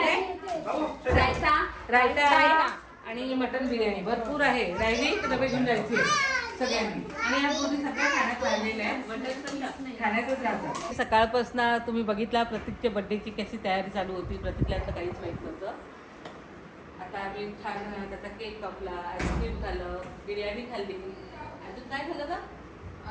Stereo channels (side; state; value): both; identical; correlation 1.00